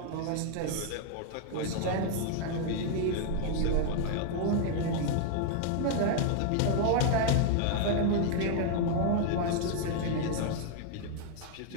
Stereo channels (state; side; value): different; both; correlation 0.00